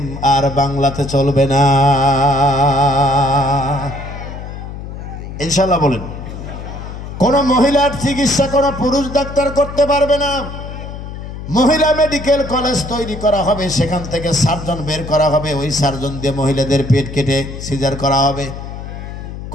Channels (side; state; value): left; noise; hum, 10 dB below the sound